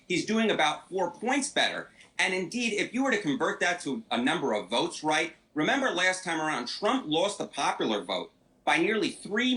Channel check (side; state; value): both; identical; correlation 1.00